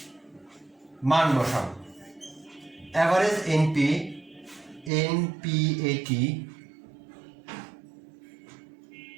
মান বসাবো। অ্যাভারেজ এনপিএটি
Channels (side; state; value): left; drops out; at 4.9 s